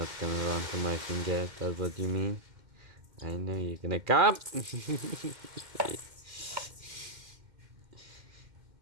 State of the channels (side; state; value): left; late; 2.1 ms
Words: gonna run to my finger, that's what you mean? I know you're gonna come!